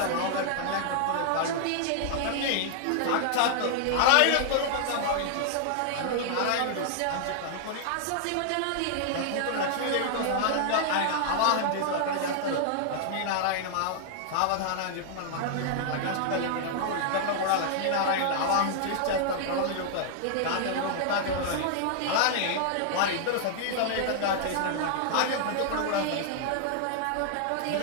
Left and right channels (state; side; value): different; both; correlation -0.01